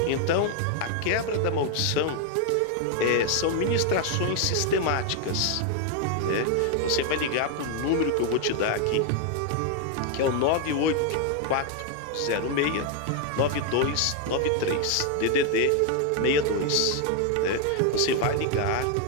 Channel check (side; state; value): both; different; correlation 0.01